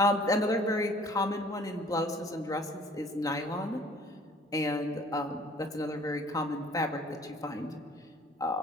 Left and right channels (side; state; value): both; normal; correlation 0.53